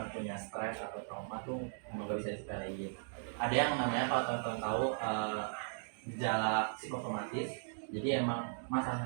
punya stres atau trauma tuh emang gak bisa disepelein. Ada yang namanya kalau teman-teman tahu gejala psikosomatis. Jadi emang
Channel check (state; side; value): silent; left; digital silence